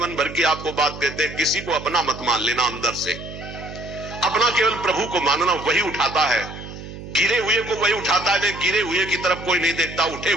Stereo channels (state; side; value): noise; right; hum, 12 dB below the sound